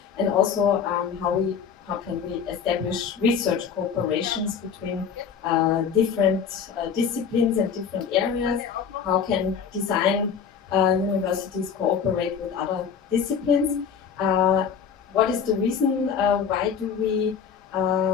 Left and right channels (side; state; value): right; quieter; 6.9 dB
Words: and also how can we establish research cooperations between different disciplines and different areas. How can design universities cooperate with other disciplines? What is the reason why do we